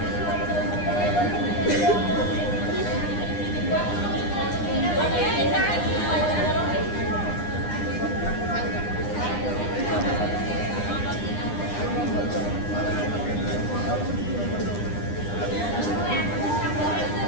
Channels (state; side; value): late; right; 9.8 ms